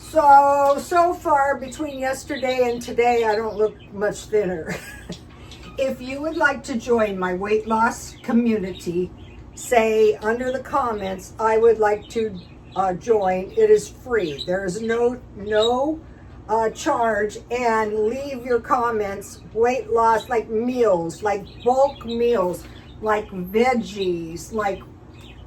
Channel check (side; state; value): both; identical; correlation 1.00